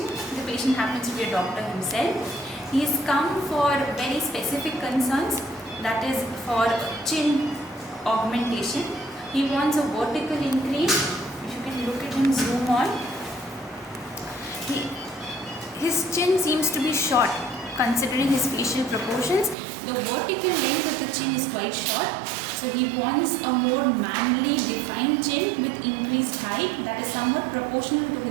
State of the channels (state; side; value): drops out; left; at 19.6 s